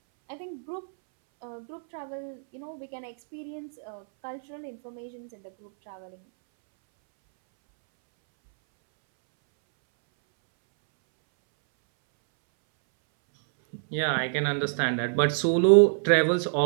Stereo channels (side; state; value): left; silent; 60 dB below the other